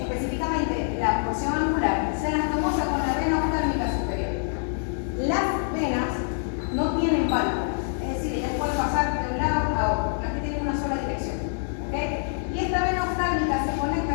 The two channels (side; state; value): right; silent; 61 dB below the other